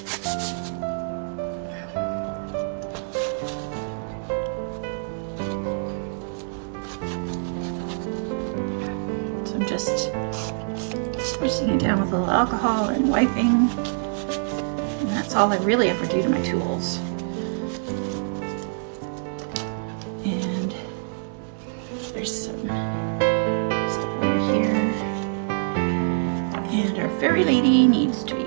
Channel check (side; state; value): left; silent; digital silence